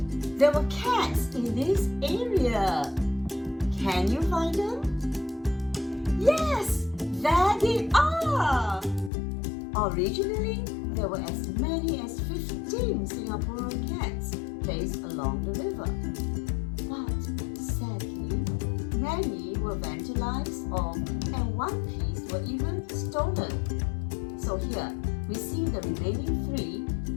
there were cats in this area. Can you find them? Yes, there they are. Originally, there were as many as 15 Singaporean cats placed along the river. But sadly, many were vandalized and one piece were even stolen. So here, we see the remaining 3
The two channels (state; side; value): drops out; right; at 9.1 s